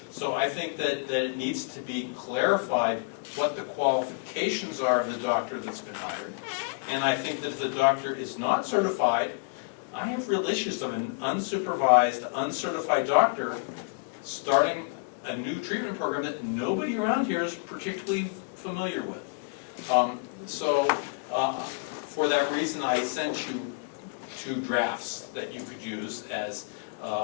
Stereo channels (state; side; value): quieter; right; 33.7 dB